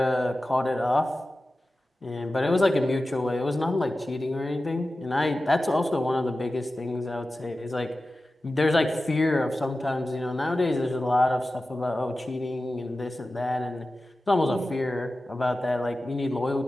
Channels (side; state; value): both; normal; correlation 0.94